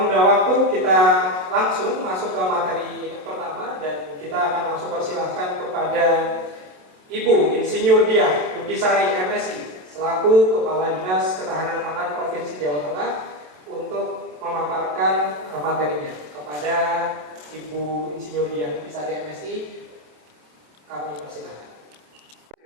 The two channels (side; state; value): left; late; 27 ms